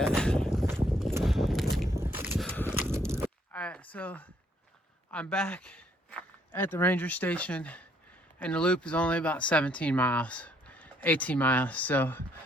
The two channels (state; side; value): normal; both; correlation 0.68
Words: Alright, so I'm back at the ranger station, and the loop is only about 17 miles, 18 miles, so